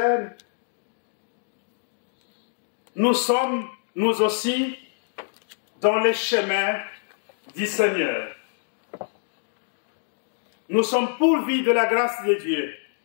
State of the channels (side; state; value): right; silent; digital silence